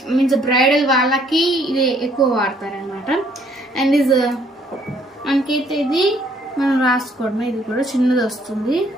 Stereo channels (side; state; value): both; normal; correlation 0.65